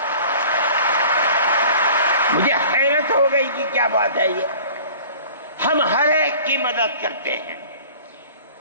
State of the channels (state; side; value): inverted; both; correlation -0.45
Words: مجھے حیرت ہو گئی کہ کیا بات ہے یہ، ہم ہر ایک کی مدد کرتے ہیں۔